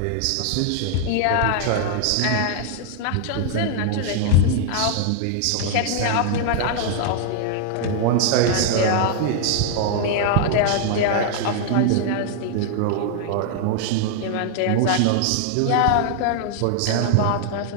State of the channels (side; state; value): both; different; correlation 0.00